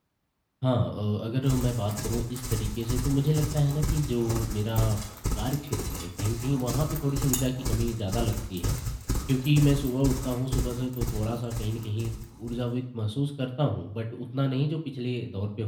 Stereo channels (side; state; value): both; identical; correlation 1.00